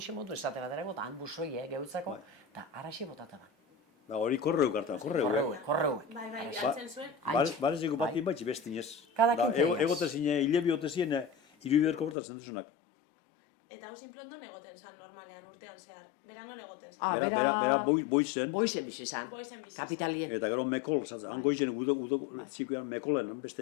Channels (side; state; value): right; drops out; at 12.2 s